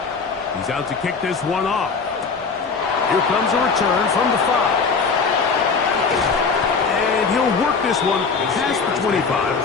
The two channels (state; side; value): quieter; right; 5.0 dB